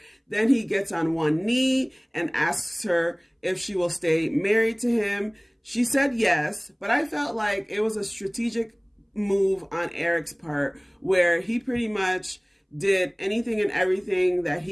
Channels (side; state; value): both; identical; correlation 1.00